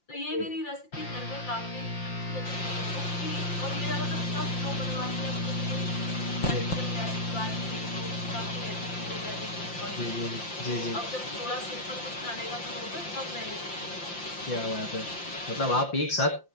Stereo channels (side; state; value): right; late; 5.7 ms